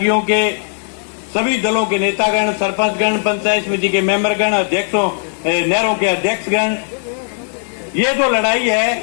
के सभी दलों के नेतागण, सरपंचगण, पंचायत समिति के मेंबरगण, अध्यक्षों, नहरों के अध्यक्षगण, ये जो लड़ाई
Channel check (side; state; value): right; silent; digital silence